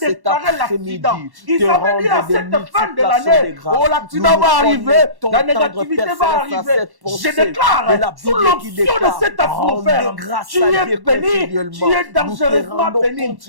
déclaré l'accident, ils avaient dit à cette fin de l'année, oh, l'accident va arriver, la négativité va arriver. Je déclare, sous l'option de cette atmosphère, tu es béni, tu es dangereusement béni.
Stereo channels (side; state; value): left; late; 1.1 ms